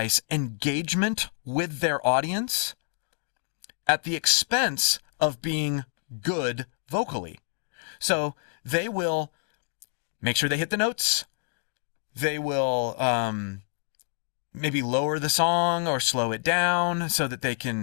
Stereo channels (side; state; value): right; silent; 60 dB below the other